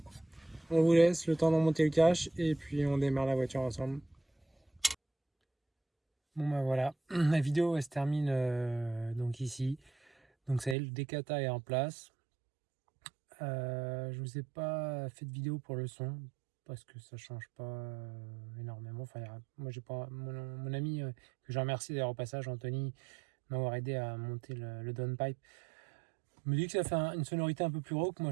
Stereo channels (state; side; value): drops out; left; at 10.8 s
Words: on vous laisse le temps d'en monter le cache et puis on démarre la voiture ensemble. Bon bah voilà, la vidéo elle se termine donc ici. Donc ça y est, le décata est en place. Je vous ai pas fait de vidéo pour le son parce que ça change pas énormément. Enfin, moi j'ai pas mon ami que je remercie d'ailleurs au passage, Anthony, m'avoir aidé à monter le downpipe. Me dit que ça fait une sonorité un peu plus rauque, moi